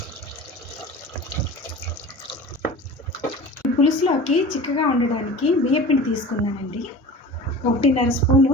పులుసులోకి చిక్కగా ఉండడానికి బియ్యపిండి తీసుకున్నానండి. 1.5 స్పూను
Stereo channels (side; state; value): both; normal; correlation 0.37